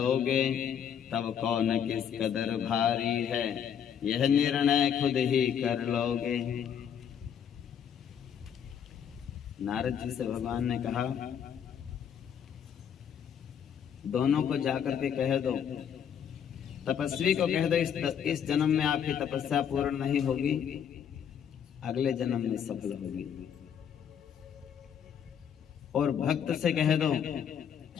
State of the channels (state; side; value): quieter; right; 8.4 dB